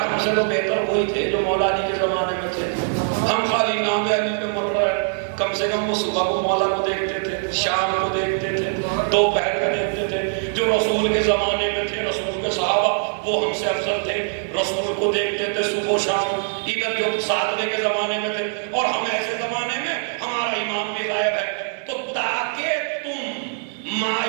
سے تو بہتر وہی تھے جو مولا علی کے زمانے میں تھے. ہم خالی نام علی پہ مر رہے ہیں, کم سے کم وہ صبح کو مولا کو دیکھتے تھے, شام کو دیکھتے تھے, دوپہر کو دیکھتے تھے. جو رسول کے زمانے میں تھے, رسول کے صحابہ وہ ہم سے افضل تھے, رسول کو دیکھتے تھے صبح و شام. ادھر جو ساتویں کے زمانے میں تھے, اور ہم ایسے زمانے میں ہمارا امام بھی غائب ہے. تو تاکہ تم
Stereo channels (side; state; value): left; silent; digital silence